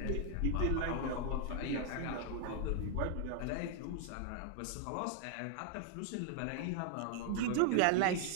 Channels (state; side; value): different; both; correlation 0.00